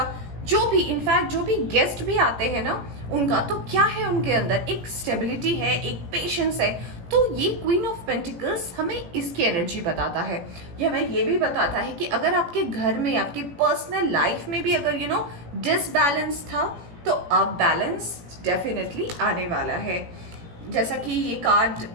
जो भी, इनफैक्ट जो भी गेस्ट भी आते हैं ना उनका, तो क्या है उनके अंदर एक स्टेबिलिटी है, एक पेशेंस है। तो ये क्वीन ऑफ पेंटिकल्स हमें इसकी एनर्जी बताता है। यह हमें ये भी बताता है कि अगर आपके घर में, आपके पर्सनल लाइफ में भी अगर डिसबैलेंस था, तो अब बैलेंस डेफिनेटली आने वाला है। जैसा कि ये कार्ड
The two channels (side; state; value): left; late; 17 ms